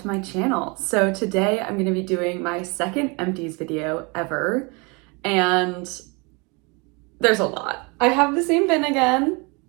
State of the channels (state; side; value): quieter; left; 29.7 dB